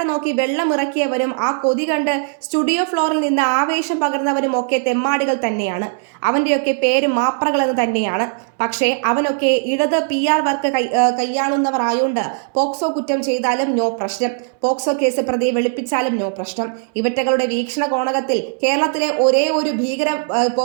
നോക്കി വെള്ളം ഇറക്കിയവരും ആ കൊതി കണ്ട് സ്റ്റുഡിയോ ഫ്ലോറിൽ നിന്ന് ആവേശം പകർന്നവരും ഒക്കെ തെമ്മാടികൾ തന്നെയാണ്. അവൻ്റെയൊക്കെ പേര് മാപ്രകളെന്ന് തന്നെയാണ്. പക്ഷേ അവനൊക്കെ ഇടത് PR വർക്ക് കൈയാളുന്നവർ ആയോണ്ട് പോക്സോ കുറ്റം ചെയ്താലും നോ പ്രശ്നം, പോക്സോ കേസ് പ്രതിയെ വെളുപ്പിച്ചാലും നോ പ്രശ്നം. ഇവറ്റകളുടെ വീക്ഷണ കോണകത്തിൽ കേരളത്തിലെ ഒരേ ഒരു ഭീകര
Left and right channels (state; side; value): silent; left; 67 dB below the other